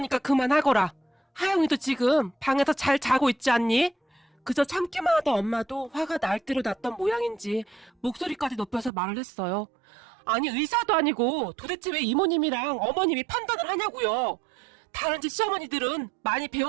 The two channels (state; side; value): drops out; left; at 8.9 s